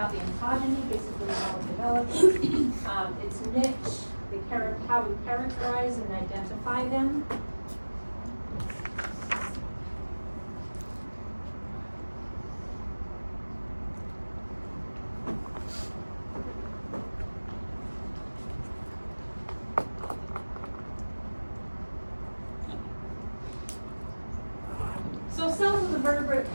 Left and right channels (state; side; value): inverted; both; correlation -1.00